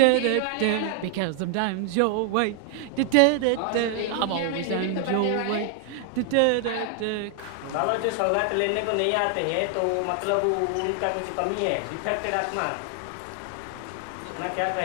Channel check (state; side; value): different; both; correlation 0.00